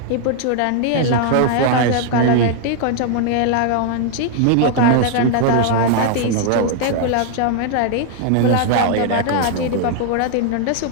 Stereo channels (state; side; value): different; both; correlation 0.00